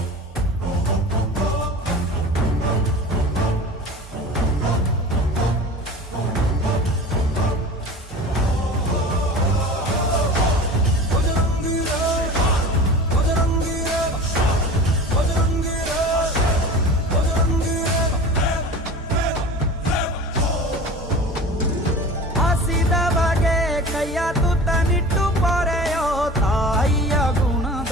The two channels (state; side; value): normal; both; correlation 0.37